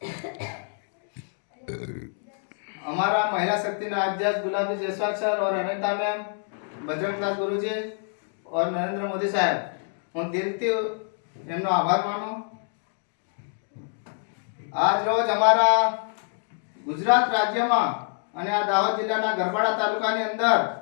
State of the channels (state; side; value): silent; right; 59 dB below the other